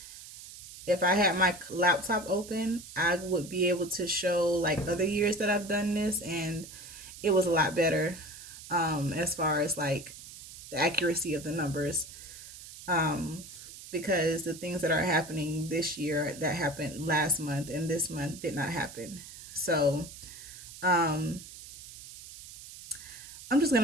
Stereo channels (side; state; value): right; noise; hiss, 14 dB below the sound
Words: if I had my laptop open, I would be able to show like other years that I've done this, and it was a lot better, as far as like the accuracy of the numbers, because the things that are happening this year that happened last month and this month did not happen. So I'm just